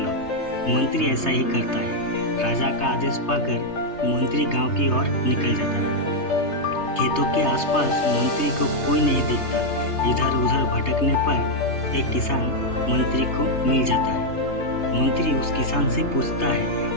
मंत्री ऐसा ही करता है। राजा का आदेश पाकर मंत्री गांव की ओर निकल जाता है। खेतों के आसपास मंत्री को कोई नहीं दिखता। इधर उधर भटकने पर एक किसान मंत्री को मिल जाता है। मंत्री उस किसान से पूछता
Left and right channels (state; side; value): late; right; 3.3 ms